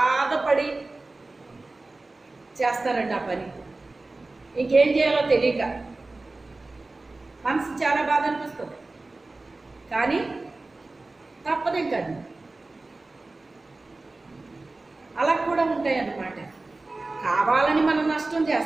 చేస్తారండి ఆ పని. ఇంకేం చేయాలో తెలియక మనసు చాలా బాధ అనిపిస్తుంది, కానీ తప్పదు ఇంకా. అలా కూడా ఉంటాయి అన్నమాట. కావాలని మనం నష్టం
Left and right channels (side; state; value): left; quieter; 3.2 dB